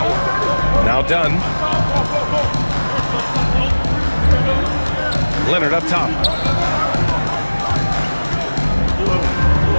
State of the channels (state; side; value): inverted; both; correlation -1.00